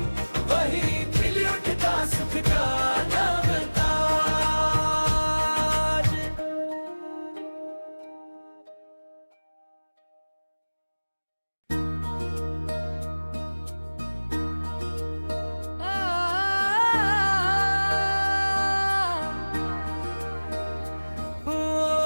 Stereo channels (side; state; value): both; inverted; correlation -1.00